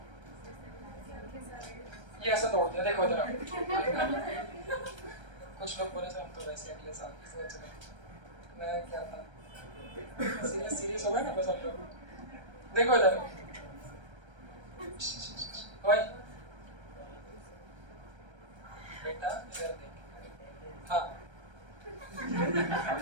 ये ऐसा तोड़ दिया देखो जरा कुछ लोग बोले थे हम तो वैसे अगले साल की सोच रहे मैं क्या था सीरियस हो गए ना बस हम लोग देखो इधर भाई बेटा इधर देख हाँ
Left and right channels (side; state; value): left; late; 1.3 ms